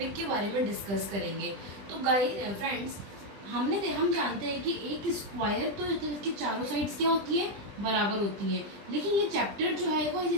के बारे में डिस्कस करेंगे। तो गाइस फ्रेंड्स, हम जानते हैं कि एक स्क्वायर तो इसकी चारों साइड्स क्या होती है, बराबर होती है, लेकिन ये चैप्टर जो है वो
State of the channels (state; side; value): late; left; 20 ms